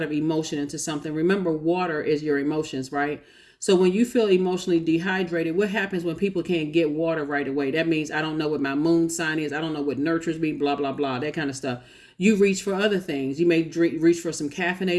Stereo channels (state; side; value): identical; both; correlation 1.00